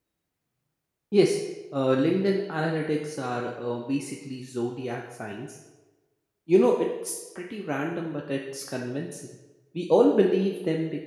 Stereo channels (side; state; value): both; identical; correlation 1.00